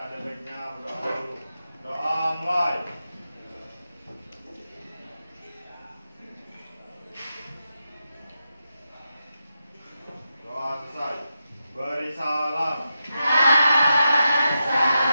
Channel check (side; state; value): both; inverted; correlation -0.88